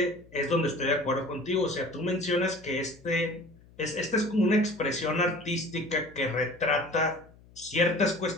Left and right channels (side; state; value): left; noise; hum, 25 dB below the sound